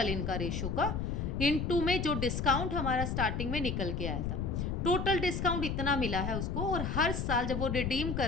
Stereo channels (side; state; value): left; noise; rumble, 1 dB below the sound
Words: इनका रेशो का, इनटू में जो डिस्काउंट हमारा स्टार्टिंग में निकल के आया था। टोटल डिस्काउंट इतना मिला है उसको, और हर साल जब वो रिडीम